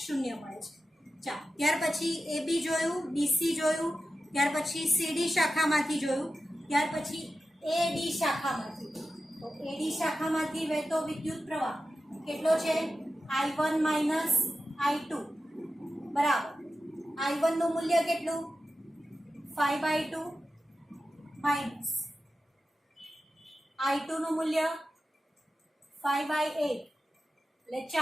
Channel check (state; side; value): normal; both; correlation 0.92